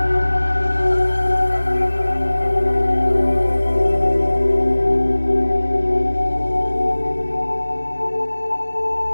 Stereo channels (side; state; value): both; inverted; correlation -1.00